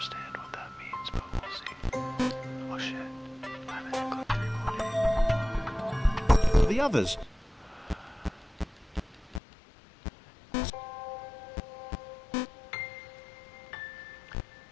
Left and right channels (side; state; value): right; drops out; at 9.4 s